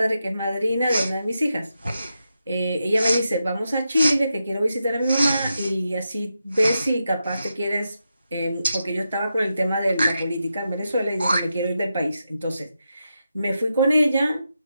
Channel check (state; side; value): inverted; both; correlation -0.87